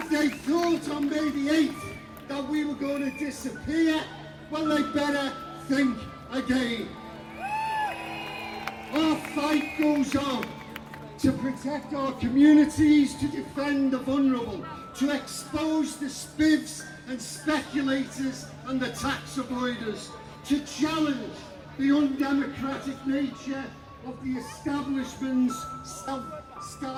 they thought on May the 8th that we were going to disappear, well, they better think again. Our fight goes on to protect our communities, to defend the vulnerable, to expose the spivs and speculators and the tax avoiders, to challenge the undemocratic nature of the establishment's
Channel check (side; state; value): both; identical; correlation 1.00